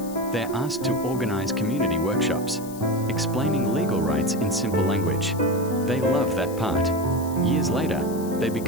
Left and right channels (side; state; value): left; noise; hiss, 17 dB below the sound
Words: they're asked to organize community workshops, explaining legal rights in simple language. They love that part. Years later, they